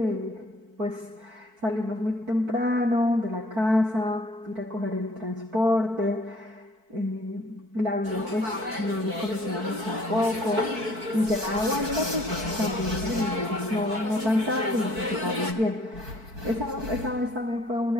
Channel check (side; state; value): left; late; 4.5 ms